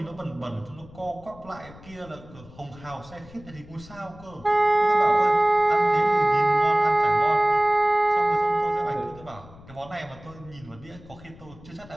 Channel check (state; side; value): noise; left; rumble, 21 dB below the sound